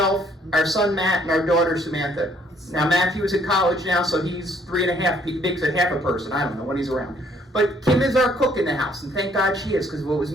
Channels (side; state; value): both; normal; correlation 0.64